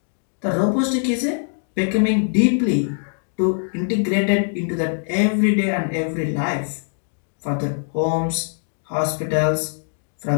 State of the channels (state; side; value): silent; right; digital silence